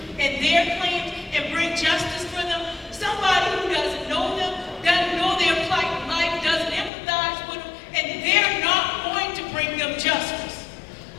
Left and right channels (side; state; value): right; drops out; at 6.9 s